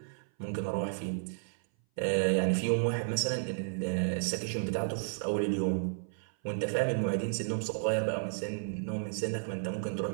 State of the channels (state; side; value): silent; left; 56 dB below the other